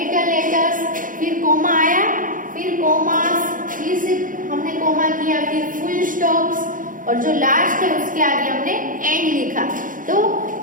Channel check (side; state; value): left; late; 0.39 ms